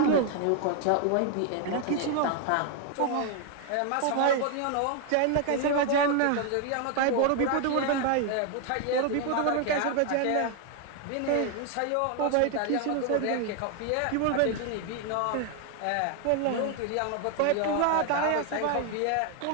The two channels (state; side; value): different; both; correlation 0.00